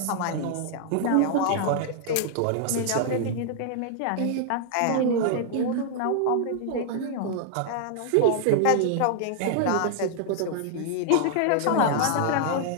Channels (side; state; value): both; different; correlation -0.01